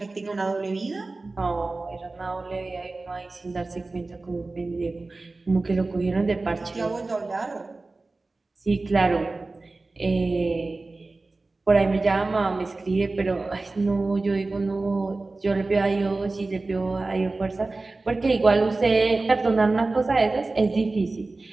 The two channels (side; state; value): left; quieter; 3.4 dB